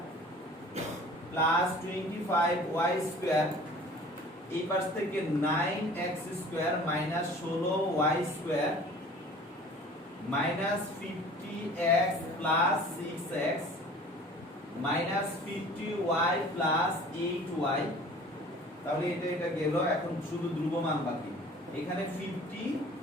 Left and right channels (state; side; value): normal; both; correlation 0.46